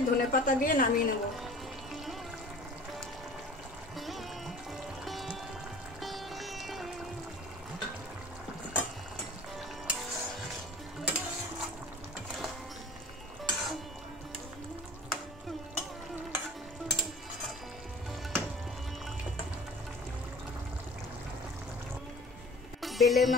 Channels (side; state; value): both; normal; correlation 0.44